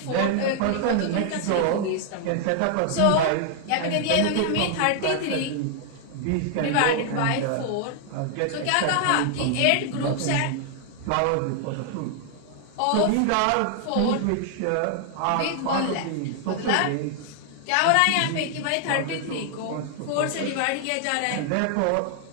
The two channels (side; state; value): both; different; correlation 0.00